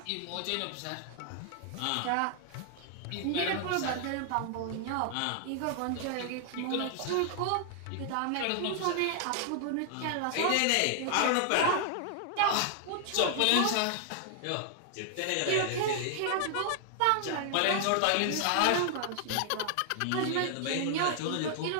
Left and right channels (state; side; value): different; both; correlation 0.00